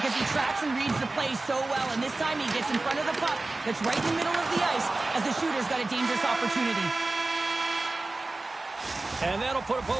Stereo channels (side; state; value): left; quieter; 3.1 dB